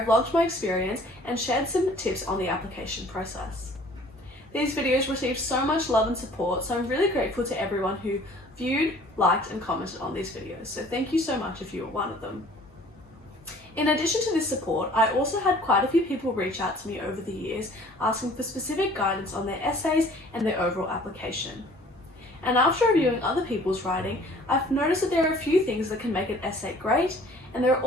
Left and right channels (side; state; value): both; normal; correlation 0.52